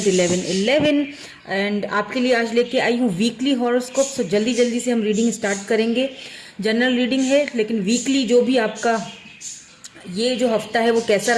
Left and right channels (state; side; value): identical; both; correlation 1.00